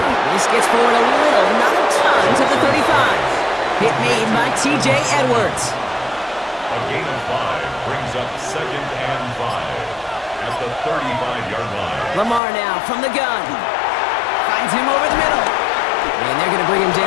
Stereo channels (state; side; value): drops out; right; at 12.4 s